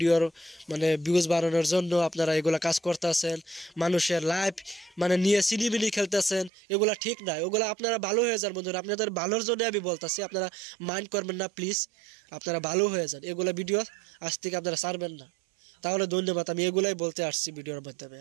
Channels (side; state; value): left; drops out; at 6.5 s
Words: ভিউজ বাড়ানোর জন্য আপনারা এগুলা কাজ করতেছেন, মানুষের লাইফ নিয়ে সিনিমিনি খেলতেছেন। এগুলা ঠিক নাই, ওগুলা আপনারা ভালো হয়ে যান বন্ধুরা, আপনাদের ভালোর জন্য আমি বলতেছি, আপনারা মাইন্ড করবেন না প্লিজ, আপনারা ভালো হয়ে যান। এগুলা ভিডিও আজ থেকে আপনারা ছাড়বেন না, তাহলে ধন্যবাদ। আমি এগুলাই বলতে আসছি ভিডিওর মাধ্যমে।